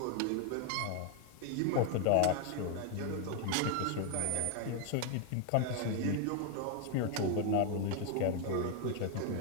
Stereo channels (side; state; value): both; different; correlation 0.01